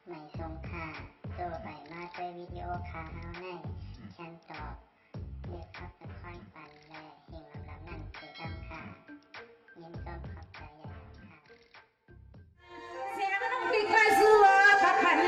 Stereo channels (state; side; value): identical; both; correlation 1.00